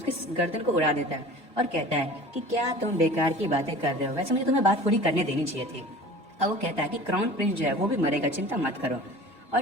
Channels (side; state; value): both; normal; correlation 0.40